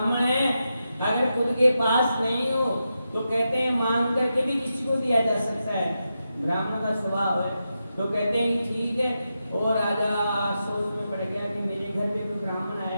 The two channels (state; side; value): inverted; both; correlation -0.88